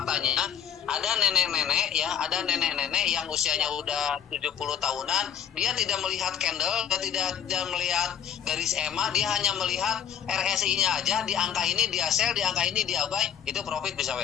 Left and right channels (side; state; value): right; quieter; 8.6 dB